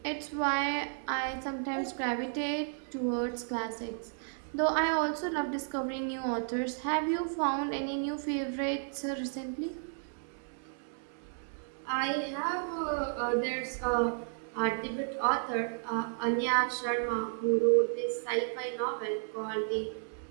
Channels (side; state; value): left; silent; 56 dB below the other